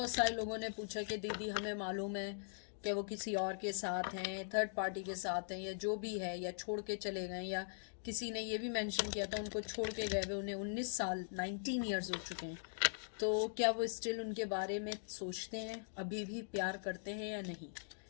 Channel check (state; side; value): silent; right; digital silence